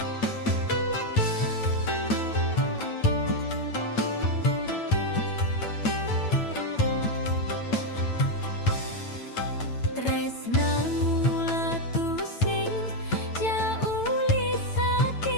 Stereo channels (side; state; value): right; late; 9.0 ms